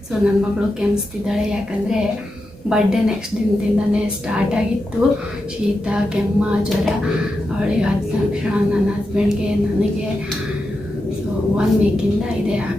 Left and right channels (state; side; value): normal; both; correlation 0.88